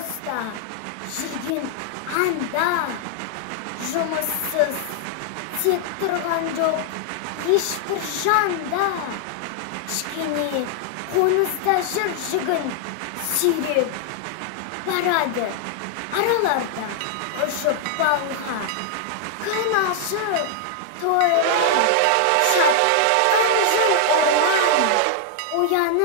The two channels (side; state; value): both; different; correlation -0.01